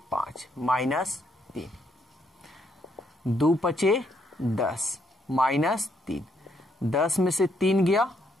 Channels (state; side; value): normal; both; correlation 0.73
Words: 5 -3, 2 पचे 10 -3, 10 में से 3 गया